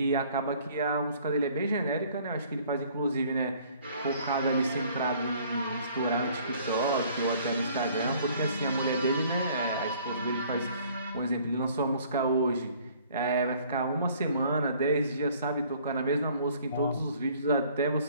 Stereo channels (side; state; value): both; inverted; correlation -0.57